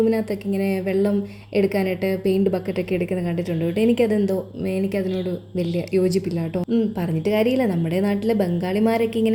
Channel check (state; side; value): identical; both; correlation 1.00